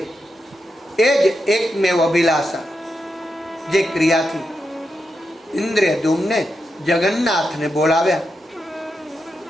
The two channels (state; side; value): normal; both; correlation 0.86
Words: એ જ એકમેવ અભિલાષા. જે ક્રિયાથી ઇન્દ્રદ્યુમ્ને જગન્નાથને બોલાવ્યા,